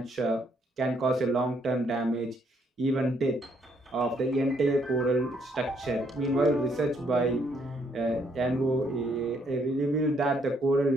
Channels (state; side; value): normal; both; correlation 0.70